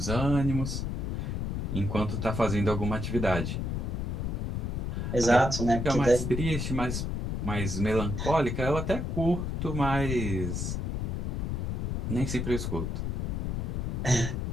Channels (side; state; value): left; noise; rumble, 1 dB below the sound